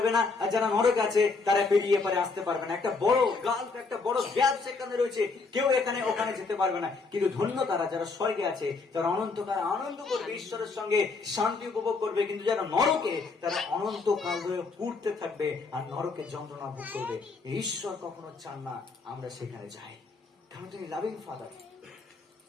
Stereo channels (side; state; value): right; quieter; 4.2 dB